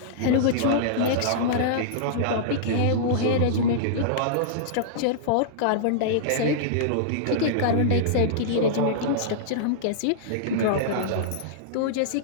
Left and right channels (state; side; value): different; both; correlation -0.02